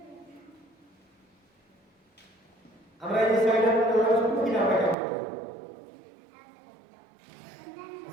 আমরা এই সাইডের মধ্যে আমরা শুধু কিনা আমরা কাম করব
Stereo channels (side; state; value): left; drops out; at 5.0 s